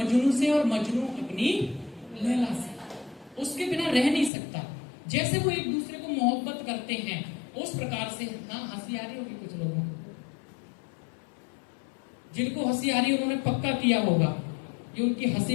से और मजनू अपनी लैला से, उसके बिना रह नहीं सकता। जैसे वो एक दूसरे को मोहब्बत करते हैं उस प्रकार से। हाँ, हंसी आ रही होगी कुछ लोगों को, जिनको हंसी आ रही है उन्होंने पक्का किया होगा, ये उनकी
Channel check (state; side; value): drops out; right; at 4.3 s